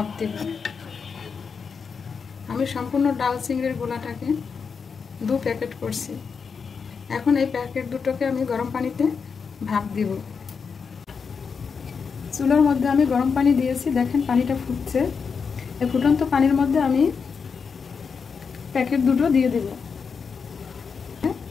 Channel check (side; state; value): right; quieter; 5.7 dB